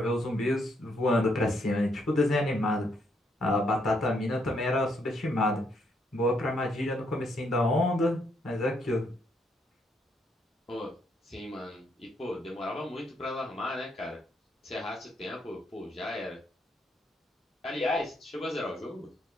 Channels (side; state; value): both; normal; correlation 0.74